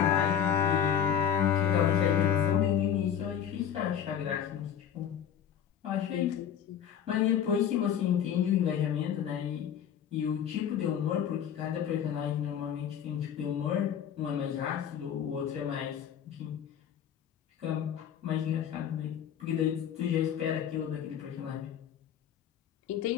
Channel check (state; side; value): quieter; right; 9.0 dB